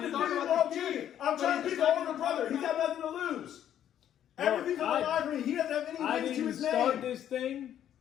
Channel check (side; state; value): right; quieter; 10.5 dB